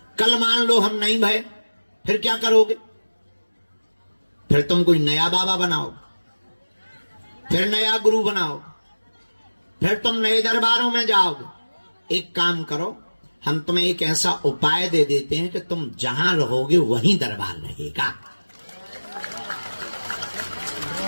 कल मान लो हम नहीं भय, फिर क्या करोगे? फिर तुम कोई नया बाबा बनाओ, फिर नया गुरु बनाओ, फिर तुम नए दरबारों में जाओगे। एक काम करो, हम तुम्हें एक ऐसा उपाय दे देते हैं कि तुम जहां रहोगे वहीं दरबार रहेगा।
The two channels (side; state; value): both; inverted; correlation -1.00